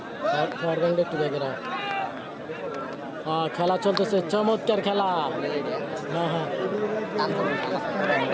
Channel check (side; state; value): both; identical; correlation 1.00